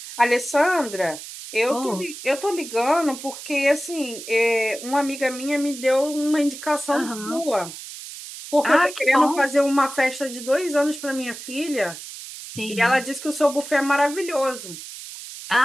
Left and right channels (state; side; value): noise; right; hiss, 12 dB below the sound